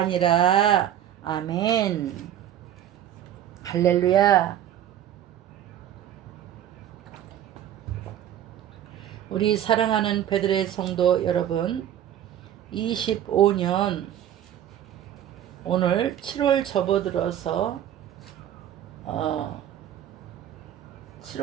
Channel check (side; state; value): left; quieter; 10.9 dB